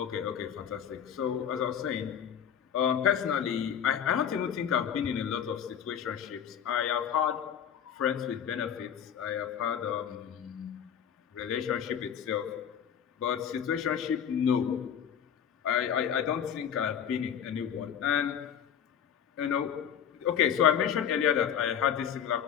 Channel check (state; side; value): quieter; right; 8.6 dB